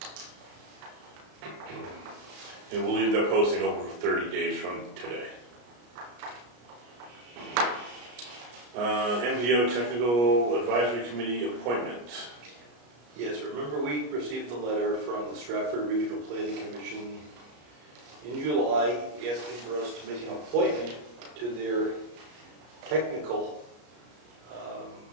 And we'll leave that posting open for 30 days from today. MPO Technical Advisory Committee appointment. Yes, remember we received a letter from the Stratford Regional Planning Commission in July asking for us to make an appointment to their technical,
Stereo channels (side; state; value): left; late; 33 ms